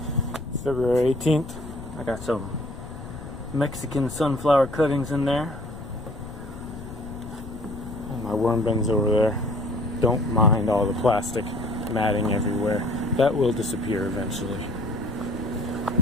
February 18th. I got some Mexican sunflower cuttings in there. And my worm bins over there. Don't mind all the plastic matting everywhere. That will disappear eventually.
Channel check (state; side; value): noise; left; rumble, 13 dB below the sound